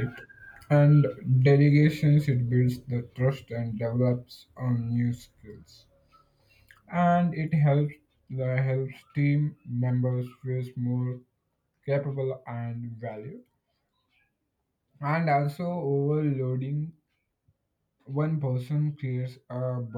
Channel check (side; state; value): both; identical; correlation 1.00